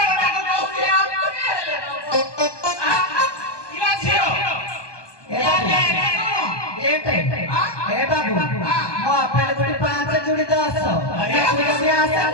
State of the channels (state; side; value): late; right; 1.2 ms